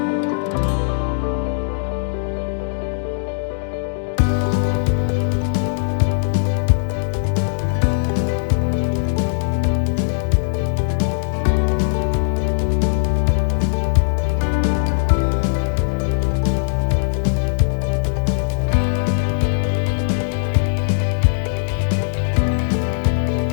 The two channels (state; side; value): silent; right; 62 dB below the other